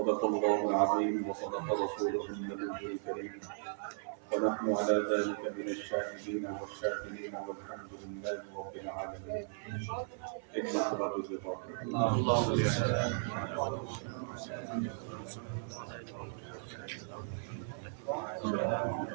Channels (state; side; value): silent; left; 53 dB below the other